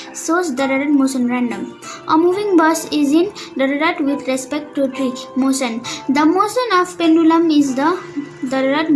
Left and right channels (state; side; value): identical; both; correlation 1.00